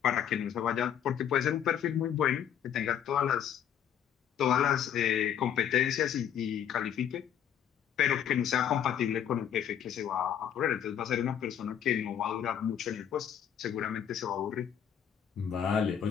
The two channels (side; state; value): right; quieter; 9.3 dB